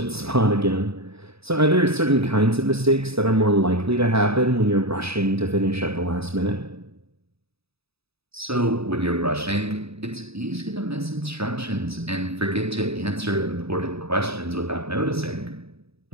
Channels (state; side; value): late; left; 0.78 ms